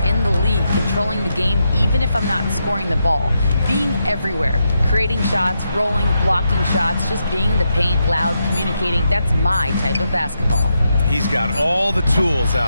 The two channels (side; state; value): both; inverted; correlation -0.83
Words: the league, controlling the game even if I'm not scoring the ball. Being everywhere, creating shots, rolling, blocking shots, just being in the paint, loud, communicating. That's my type of basketball." He's got all the tools,